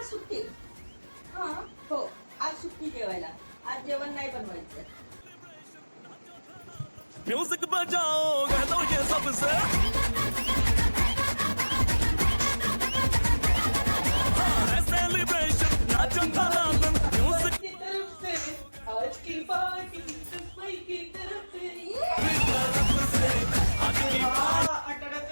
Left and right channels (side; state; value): both; inverted; correlation -1.00